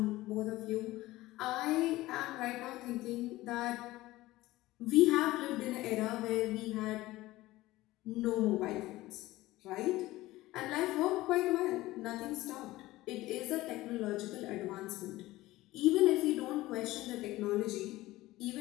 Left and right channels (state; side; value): quieter; right; 17.7 dB